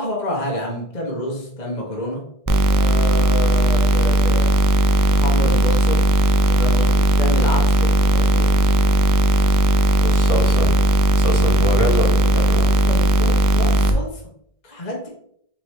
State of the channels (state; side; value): late; right; 1.6 ms